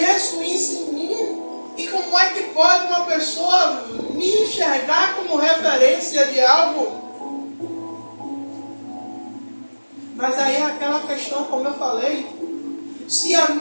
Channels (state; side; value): inverted; both; correlation -1.00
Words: isso em mim. E como é que pode uma pessoa me enxergar como referência de algo? Mas aí é aquela questão, como eu falei, se a